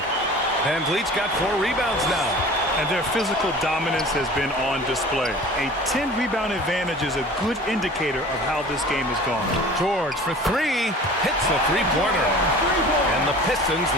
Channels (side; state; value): both; normal; correlation 0.42